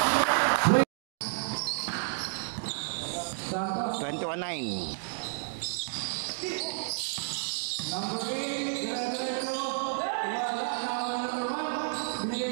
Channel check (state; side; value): silent; left; digital silence